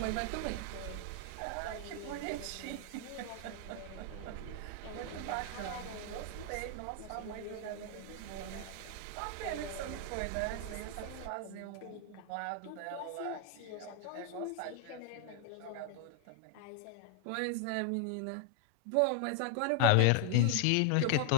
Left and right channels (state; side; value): different; both; correlation 0.00